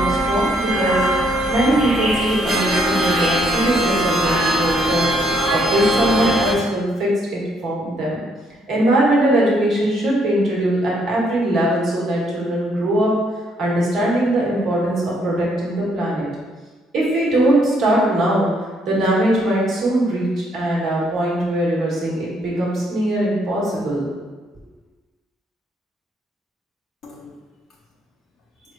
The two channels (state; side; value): normal; both; correlation 0.71